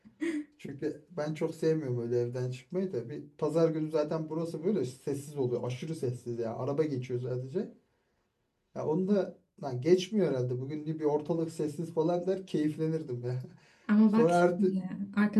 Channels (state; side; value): identical; both; correlation 1.00